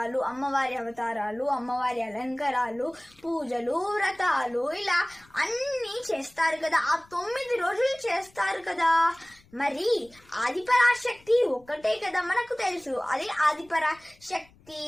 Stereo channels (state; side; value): noise; left; rumble, 28 dB below the sound